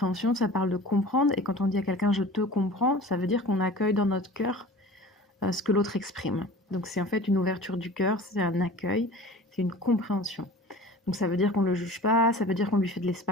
ça parle de comprendre. Et quand on dit à quelqu'un je te comprends, ça veut dire qu'on accueille dans notre cœur ce que l'autre exprime. Donc c'est en fait une ouverture du cœur, c'est un accueil, c'est une compréhension. Donc ça veut dire qu'on ne le juge pas, ça veut dire qu'on lui fait de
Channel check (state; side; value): normal; both; correlation 0.41